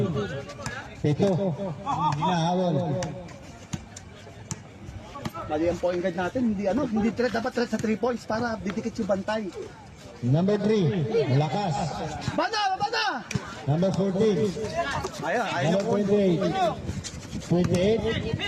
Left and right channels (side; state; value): both; identical; correlation 1.00